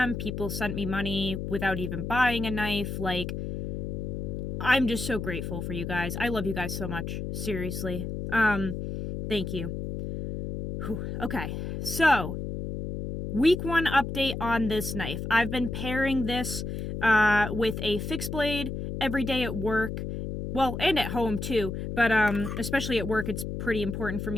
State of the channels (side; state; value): left; noise; hum, 4 dB below the sound